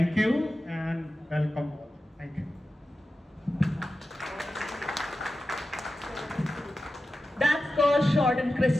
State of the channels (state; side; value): normal; both; correlation 0.93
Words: you and welcome. Thank you. That's called short and